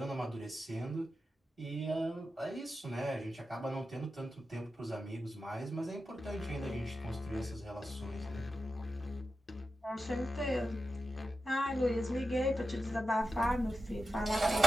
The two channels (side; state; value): both; normal; correlation 0.91